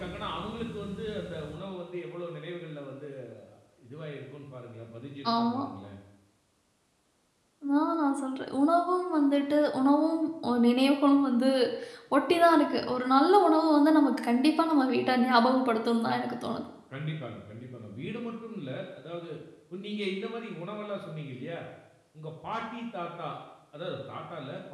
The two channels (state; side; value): identical; both; correlation 1.00